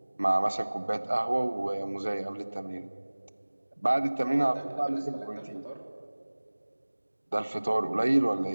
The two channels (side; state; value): both; inverted; correlation -1.00